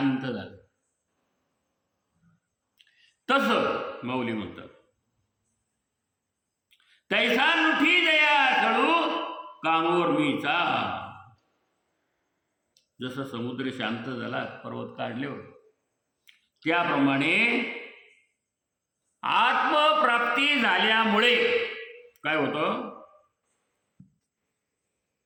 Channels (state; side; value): identical; both; correlation 1.00